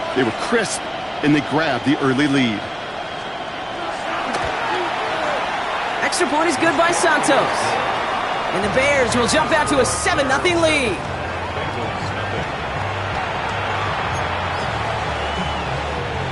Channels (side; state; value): both; identical; correlation 1.00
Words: they were crisp, and they grabbed the early lead. Extra point is good by Santos. And the Bears will jump out to a 7-0 lead.